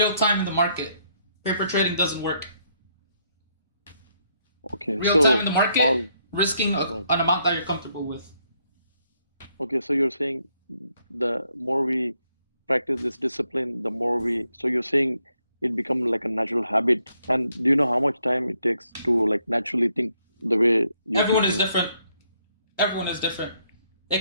time in the market. Paper trading doesn't work. Okay. Real time in the market, risking an amount that you're comfortable with. Okay, so you're saying the more we practice this discipline, the more so you're saying it becomes like a natural habit. And do you know how much time it takes to like naturally think the way you Everyone is different. Everyone is different.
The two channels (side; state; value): both; inverted; correlation -0.74